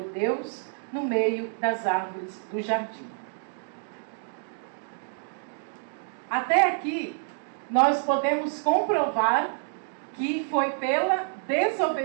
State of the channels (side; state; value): left; silent; digital silence